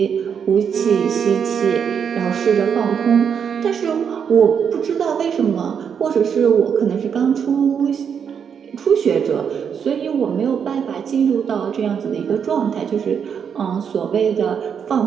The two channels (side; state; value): left; quieter; 7.3 dB